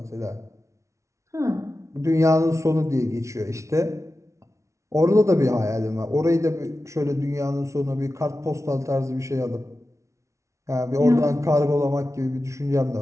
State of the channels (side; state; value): left; late; 0.14 ms